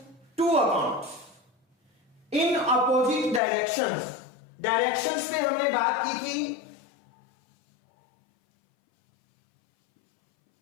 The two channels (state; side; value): drops out; right; at 3.4 s